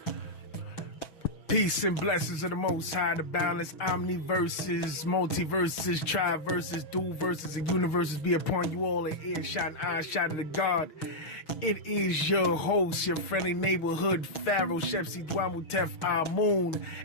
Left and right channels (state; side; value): late; right; 6.2 ms